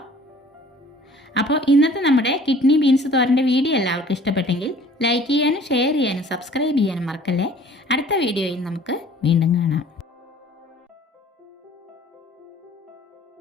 അപ്പോൾ ഇന്നത്തെ നമ്മുടെ കിഡ്നി ബീൻസ് തോരൻ്റെ വീഡിയോ എല്ലാവർക്കും ഇഷ്ടപ്പെട്ടെങ്കിൽ ലൈക്ക് ചെയ്യാനും ഷെയർ ചെയ്യാനും സബ്സ്ക്രൈബ് ചെയ്യാനും മറക്കല്ലേ. അടുത്ത വീഡിയോയിൽ നമുക്ക് വീണ്ടും കാണാം.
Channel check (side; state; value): both; normal; correlation 0.51